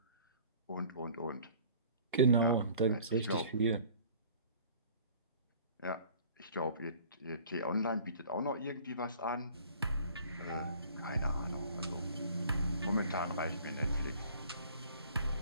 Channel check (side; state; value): both; inverted; correlation -0.50